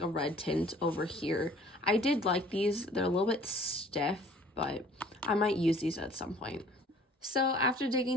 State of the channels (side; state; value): both; normal; correlation 0.53